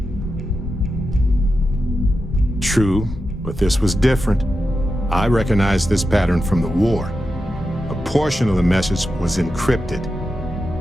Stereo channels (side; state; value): both; normal; correlation 0.90